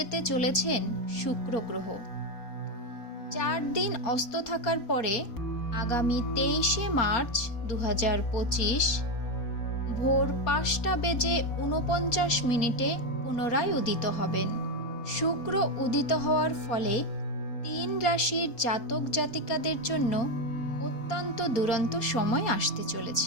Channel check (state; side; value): late; right; 4.3 ms